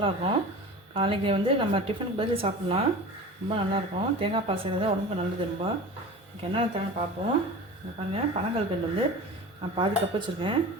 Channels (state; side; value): normal; both; correlation 0.35